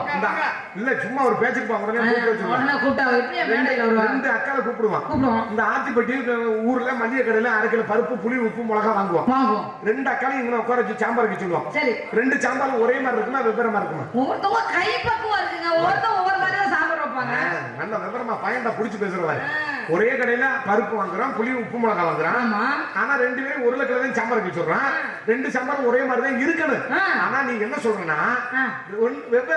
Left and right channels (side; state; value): both; identical; correlation 1.00